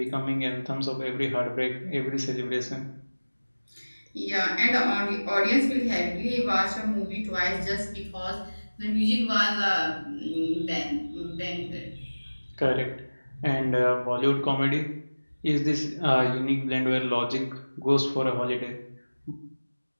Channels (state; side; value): inverted; both; correlation -1.00